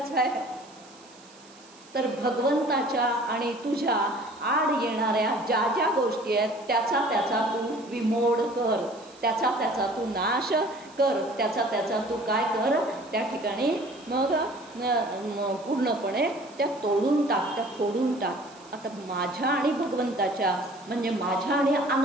आहे? तर भगवंताच्या आणि तुझ्या आड येणाऱ्या ज्या ज्या गोष्टी आहेत त्याचा तू विमोड कर, त्याचा तू नाश कर, त्याचा तू काय कर, त्या ठिकाणी मग पूर्णपणे त्या तोडून टाक, त्या फोडून टाक. आता माझ्या आणि भगवंताच्या म्हणजे माझ्या आणि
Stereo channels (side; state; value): right; noise; hiss, 24 dB below the sound